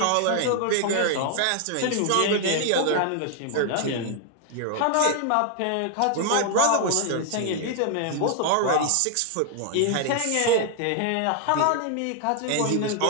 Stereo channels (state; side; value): different; both; correlation 0.00